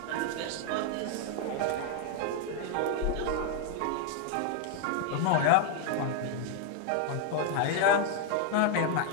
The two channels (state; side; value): different; both; correlation 0.01